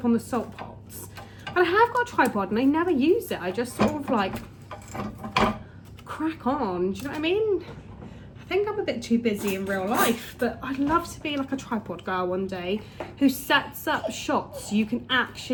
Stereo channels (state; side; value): identical; both; correlation 1.00